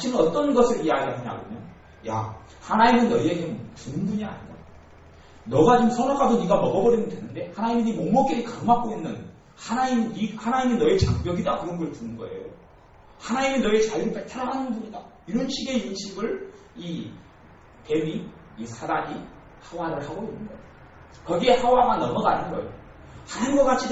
어떤 것을 이야기하냐면요. 야, 하나님은 너희에게 주는 분이 아니다. 너가 지금 선악과도 네가 먹어버리면 되는데 하나님이 네 목목끼리 가로막고 있는 하나님이 너의 장벽이다 그런 걸 주는 거예요. 하나님이 너의 자유를 뺏어나가는 분이다. 이런 식의 인식을 이 뱀이 이 사단이 하와를 하고 있는 거예요. 거기에 하와가 넘어가는 거예요. 하나님과 같이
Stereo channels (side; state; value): both; identical; correlation 1.00